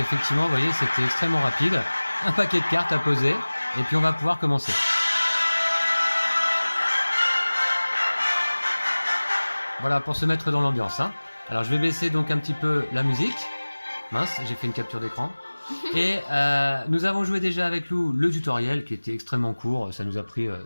vous voyez, c'était extrêmement rapide. Un paquet de cartes à poser. Et puis on va pouvoir commencer. Voilà, pour se mettre dans l'ambiance. Hein. Alors je vais baisser donc un petit peu la musique. Mince, j'ai fait une capture d'écran. Et nous avons joué déjà avec Lou le tutoriel qui était extrêmement court. Ça nous a pris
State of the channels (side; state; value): both; inverted; correlation -1.00